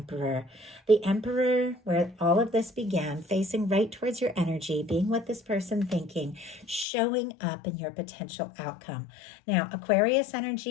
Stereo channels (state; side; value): drops out; right; at 6.9 s